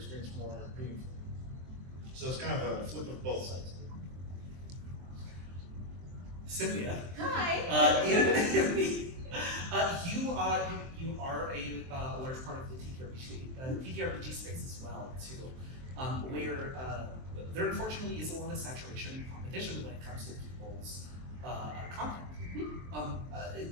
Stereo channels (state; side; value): late; left; 23 ms